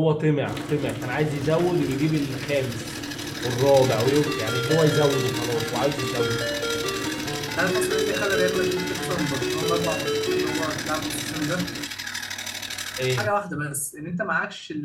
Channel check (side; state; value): both; identical; correlation 1.00